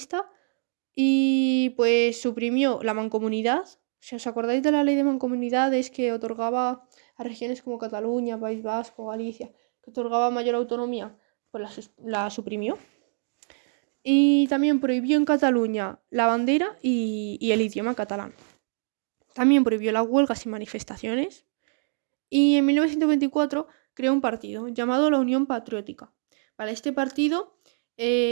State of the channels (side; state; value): left; silent; digital silence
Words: y pues suprimió la mancomunidad. Si os acordáis de la ley de mancomunidades que otorgaba a regiones como Cataluña, País Vasco, Galicia, que otorgaba mayor autonomía, pues la suprimió. Y también prohibió en Cataluña la bandera y el idioma catalán. También prohibió las huelgas y manifestaciones. Y en 1924 creó un partido llamado la Unión Patriótica. Para este partido